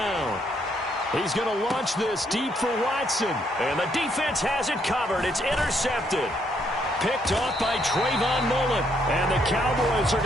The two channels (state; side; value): normal; both; correlation 0.72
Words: He's going to launch this deep for Watson. And the defense has it covered. It's intercepted. Picked off by Trayvon Mullen. And the Cowboys are